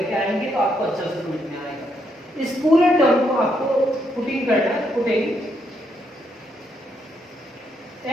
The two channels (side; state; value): both; normal; correlation 0.76